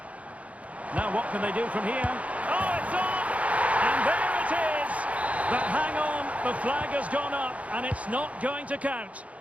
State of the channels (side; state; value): left; late; 0.066 ms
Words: Now what can they do from here? Oh, it's on! And there it is! But hang on, the flag has gone up and it's not going to count.